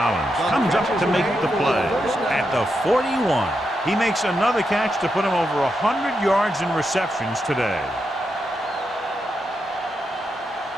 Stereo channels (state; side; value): normal; both; correlation 0.85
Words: comes up to make the play at the 41. He makes another catch to put him over 100 yards in receptions today.